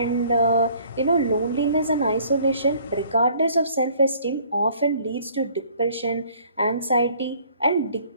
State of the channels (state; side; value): inverted; both; correlation -0.57